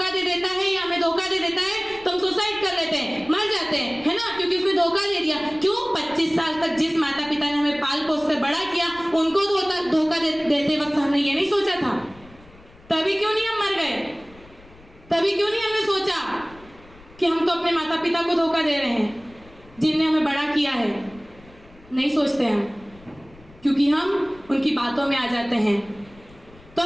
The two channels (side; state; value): left; noise; rumble, 25 dB below the sound